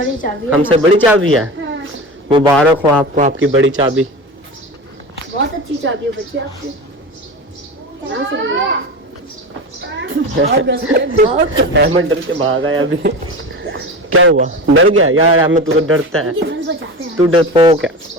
चाबी है। हमसे बड़ी चाबी है? हाँ। मुबारक हो आपको आपकी बड़ी चाबी। बहुत अच्छी चाबी है बच्ची आपकी। अहमद डर के भाग आया अभी। क्या हुआ, डर गया यार? अहमद तू तो डरता है, तू डरपोक है।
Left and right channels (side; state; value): both; normal; correlation 0.28